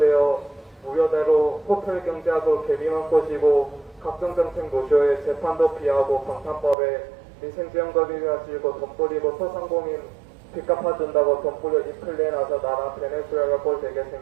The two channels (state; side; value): drops out; left; at 6.8 s